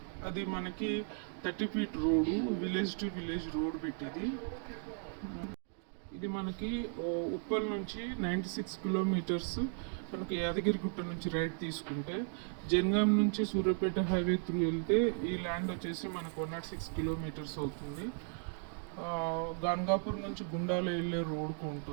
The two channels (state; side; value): silent; left; 54 dB below the other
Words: అది మనకి 30 feet road, village to village road పెట్టింది. ఇది మనకి ఉప్పల్ నుంచి 96 కిలోమీటర్స్. మనకి యాదగిరిగుట్ట నుంచి రైట్ తీసుకుంటే జనగాం నుంచి సూర్యాపేట హైవే త్రూ వెళ్తే ఈ ల్యాండ్ వచ్చేసి మనకు 106 కిలోమీటర్స్ అవుతుంది. గాన్గాపూర్ నుంచి గుండాల వెళ్ళే రోడ్కు